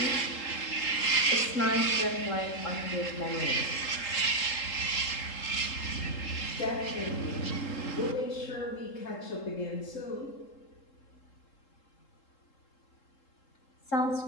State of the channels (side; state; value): right; late; 3.7 ms